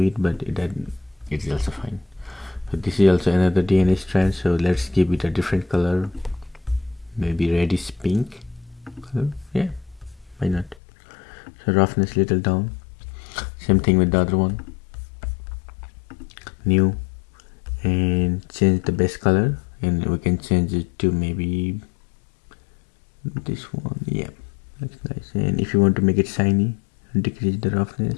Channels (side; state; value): right; drops out; at 10.8 s